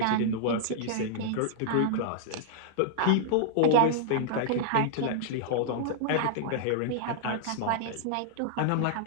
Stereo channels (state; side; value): different; both; correlation -0.01